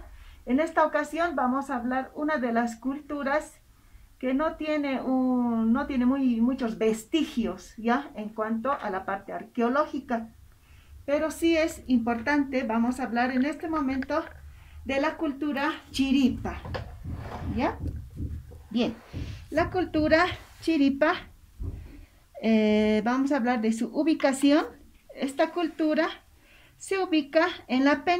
En esta ocasión vamos a hablar una de las culturas que no tiene muchos vestigios, ¿ya? En cuanto a la parte arqueológica. Pero sí es importante, vamos a hablar en este momento de la cultura chiripa, ¿ya? Bien, la cultura chiripa, vamos a hablar de su ubicación. Esta cultura se ubica en la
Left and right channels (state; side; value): identical; both; correlation 1.00